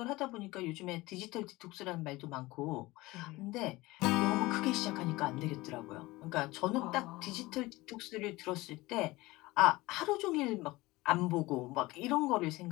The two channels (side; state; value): right; quieter; 20.2 dB